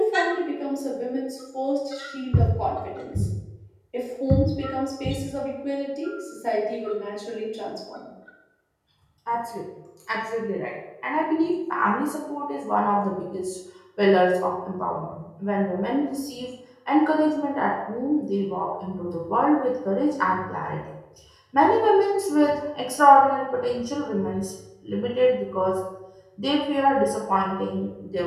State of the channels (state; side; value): identical; both; correlation 1.00